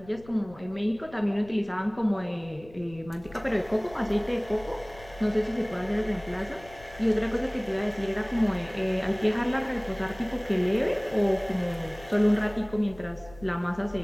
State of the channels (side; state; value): left; noise; rumble, 21 dB below the sound